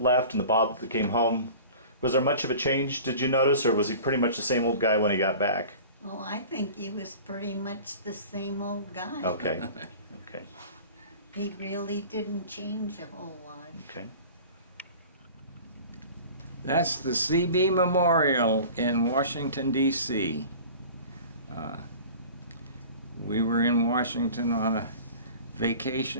left and the Bob that came home? Was there much of a change, did you notice, or was he pretty much the same old guy when he got back? Oh, I think he was pretty much the same old guy. Okay. Okay. He really didn't change a whole lot. Okay. That's the CB Memorial in Washington, D.C. We were in Washington on a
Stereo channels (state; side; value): inverted; both; correlation -0.41